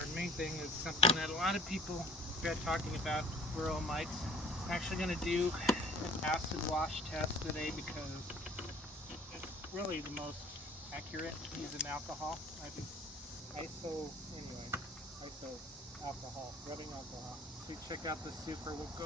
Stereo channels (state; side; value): normal; both; correlation 0.52